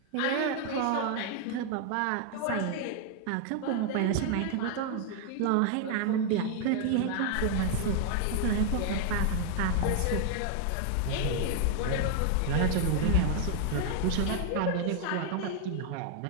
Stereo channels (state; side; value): different; both; correlation 0.00